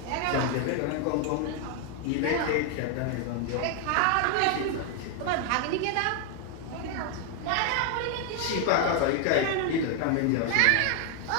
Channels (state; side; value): different; both; correlation 0.01